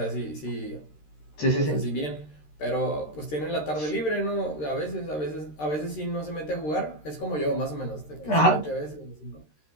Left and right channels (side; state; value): right; late; 13 ms